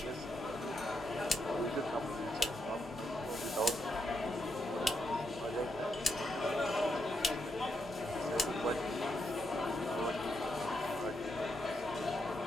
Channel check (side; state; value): both; normal; correlation 0.81